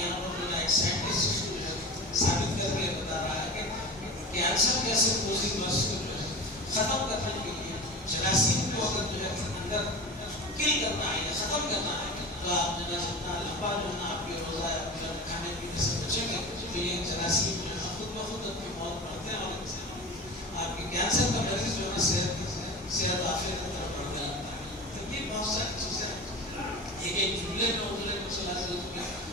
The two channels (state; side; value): normal; both; correlation 0.32